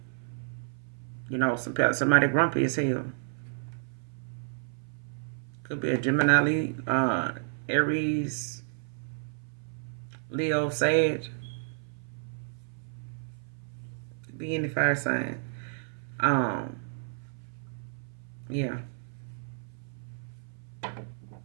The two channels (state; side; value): silent; left; 57 dB below the other